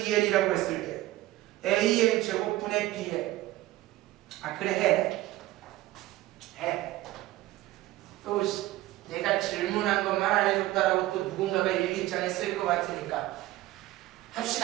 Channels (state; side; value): quieter; left; 16.7 dB